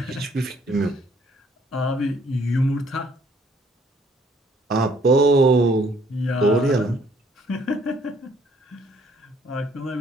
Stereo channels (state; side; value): normal; both; correlation 0.64